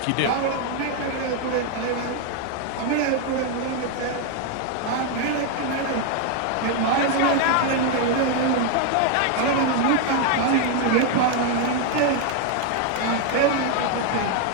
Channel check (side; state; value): both; different; correlation 0.01